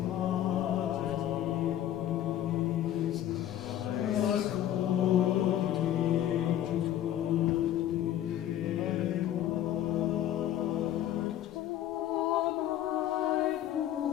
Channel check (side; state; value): right; quieter; 11.9 dB